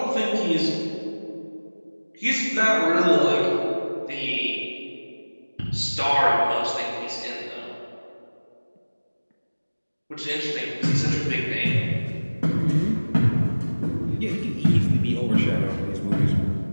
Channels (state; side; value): inverted; both; correlation -1.00